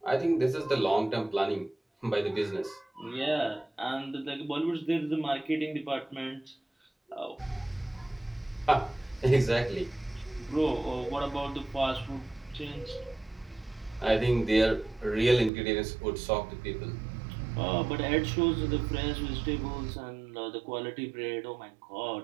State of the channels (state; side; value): drops out; left; at 15.5 s